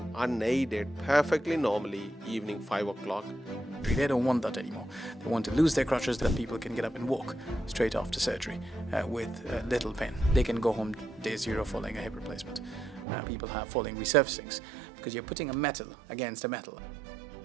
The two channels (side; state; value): left; drops out; at 13.1 s